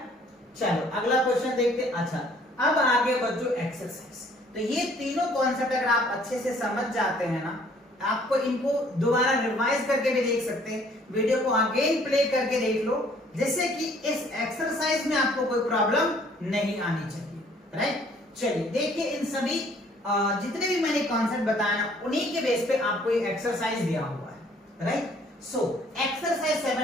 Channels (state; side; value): normal; both; correlation 0.59